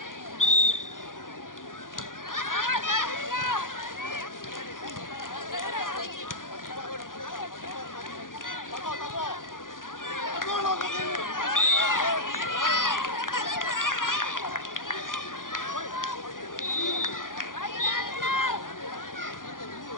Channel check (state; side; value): late; right; 0.89 ms